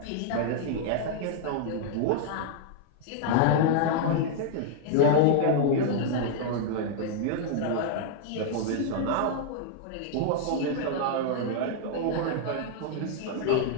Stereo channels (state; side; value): different; both; correlation -0.01